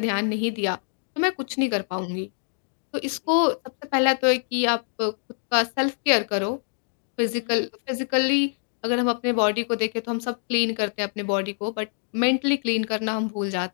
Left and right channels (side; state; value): right; silent; 61 dB below the other